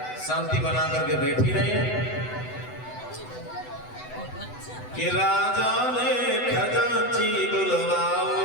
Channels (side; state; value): right; late; 8.0 ms